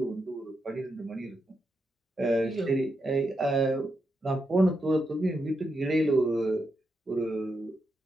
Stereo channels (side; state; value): both; normal; correlation 0.84